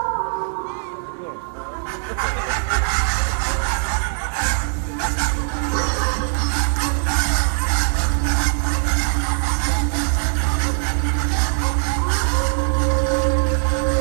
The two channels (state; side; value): silent; left; 60 dB below the other